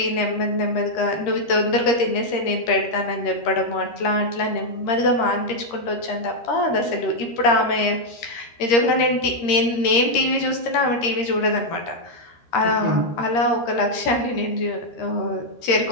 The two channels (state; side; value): late; right; 13 ms